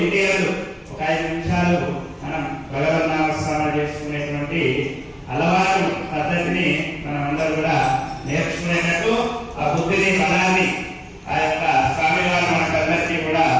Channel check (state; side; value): identical; both; correlation 1.00